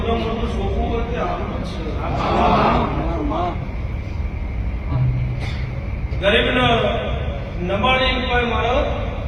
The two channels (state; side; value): identical; both; correlation 1.00